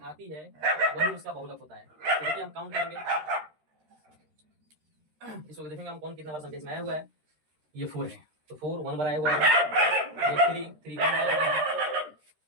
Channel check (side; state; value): left; late; 13 ms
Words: आती है वही उसका बहुलक होता है। तो देखिए हम काउंट करेंगे, इसको देखेंगे हम कौन कितना बार संख्या इसमें आया हुआ है। ये 4 है, तो 4 1 बार आया हुआ है। ये 3 1 बार आया हुआ है।